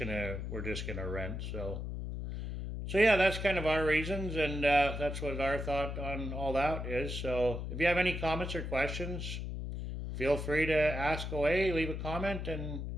rent. So yeah, that's kind of our reasons, and that's what our thought on all that is. So if you have any comments or questions, feel free to ask away, leave a comment, and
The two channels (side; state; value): left; noise; hum, 5 dB below the sound